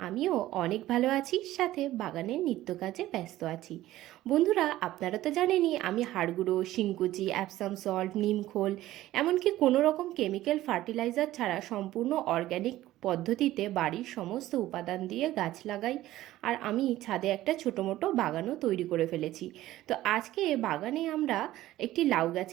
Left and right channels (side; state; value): left; quieter; 15.2 dB